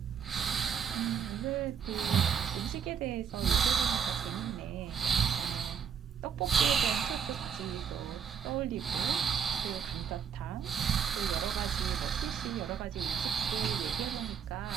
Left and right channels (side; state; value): left; quieter; 7.4 dB